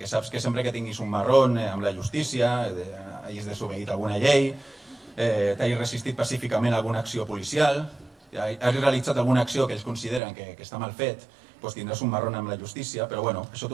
saps que sempre que tinguis un marrón amb la justícia, hagis desobeït alguna llei, t'hagis resistit pacíficament a alguna acció policial, hagis realitzat alguna acció que ells consideren que està mal fet, doncs tindràs un marrón amb la justícia, però bueno, això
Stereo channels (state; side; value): drops out; left; at 10.2 s